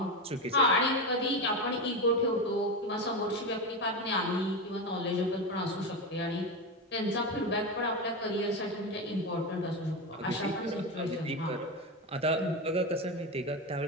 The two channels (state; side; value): normal; both; correlation 0.16